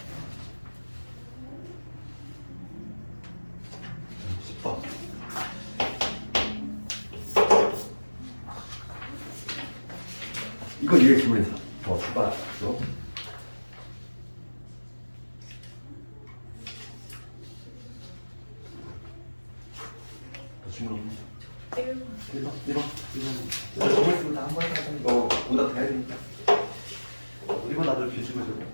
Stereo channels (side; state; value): both; inverted; correlation -1.00